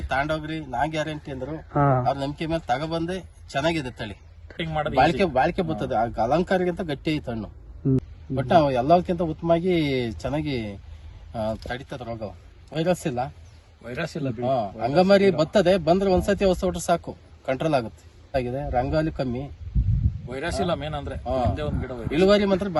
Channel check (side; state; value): both; identical; correlation 1.00